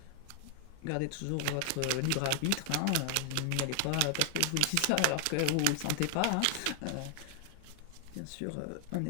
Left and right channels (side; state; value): both; different; correlation 0.00